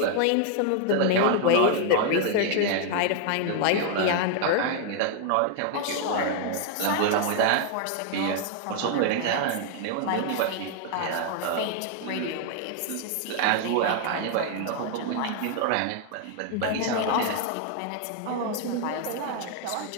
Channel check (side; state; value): both; different; correlation 0.00